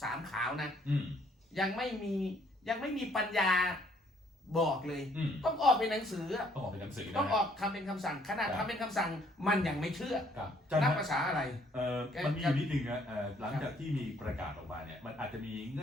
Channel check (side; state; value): both; normal; correlation 0.64